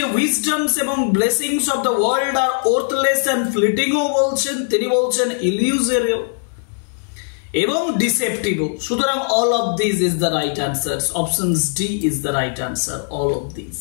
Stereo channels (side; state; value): right; silent; digital silence